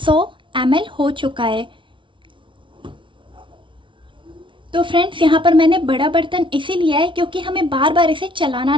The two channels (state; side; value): late; left; 0.24 ms